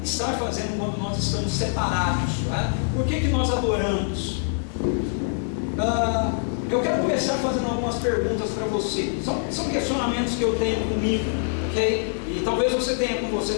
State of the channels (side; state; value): right; silent; digital silence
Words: estar fazendo quando nós estamos separados, né? Por que nós adoramos? Eu quero começar fazendo algumas perguntas para você. São questionamentos que eu tenho comigo, ok? E talvez você tenha com você